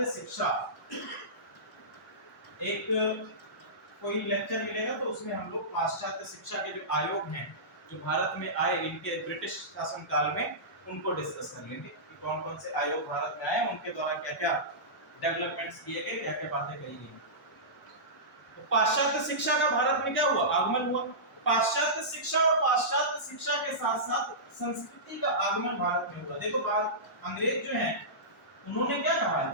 शिक्षा। एक कोई लेक्चर मिलेगा तो उसमें हम लोग पाश्चात्य शिक्षा के जो आयोग हैं जो भारत में आए इनके ब्रिटिश शासन काल में, उनको डिस्कस कर लेंगे कि कौन कौन से आयोग भारत में आए, उनके द्वारा क्या क्या डेवलपमेंट्स किए गए, क्या क्या बातें कही गई। तो पाश्चात्य शिक्षा का भारत में क्या हुआ, आगमन हुआ। पाश्चात्य शिक्षा और पाश्चात्य शिक्षा के साथ साथ संस्कृति का आगमन भारत में हुआ। देखो अंग्रेज जो हैं उन्होंने क्या कहा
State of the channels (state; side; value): normal; both; correlation -0.18